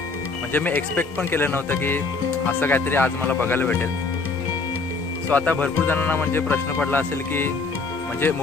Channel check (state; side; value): quieter; right; 4.1 dB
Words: म्हणजे मी एक्सपेक्ट पण केलं नव्हतं की असं काहीतरी आज मला बघायला भेटेल. सो आता भरपूर जणांना म्हणजे प्रश्न पडला असेल की म्हणजे